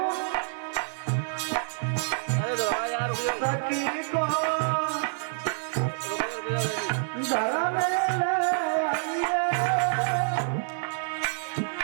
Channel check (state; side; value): silent; left; digital silence